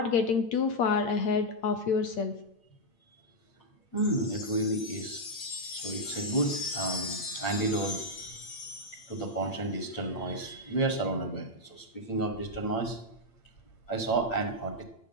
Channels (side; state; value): right; late; 8.7 ms